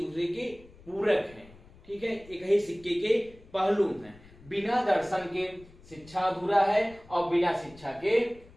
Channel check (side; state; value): left; noise; rumble, 23 dB below the sound